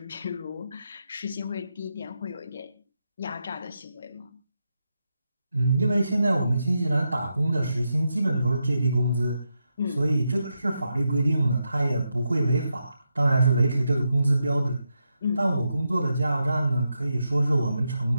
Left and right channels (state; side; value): inverted; both; correlation -0.85